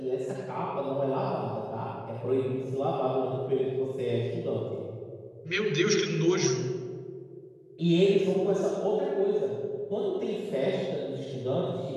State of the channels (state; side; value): identical; both; correlation 1.00